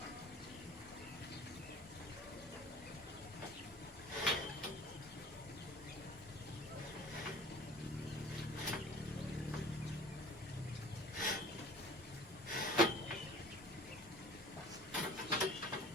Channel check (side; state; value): both; normal; correlation 0.45